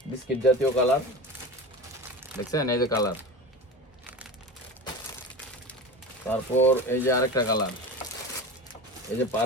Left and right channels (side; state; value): both; normal; correlation 0.29